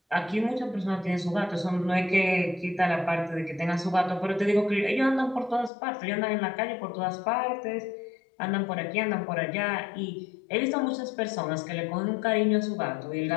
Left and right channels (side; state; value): right; drops out; at 5.7 s